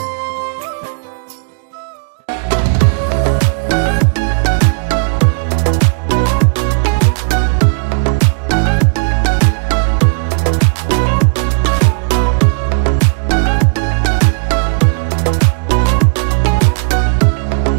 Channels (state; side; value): silent; left; digital silence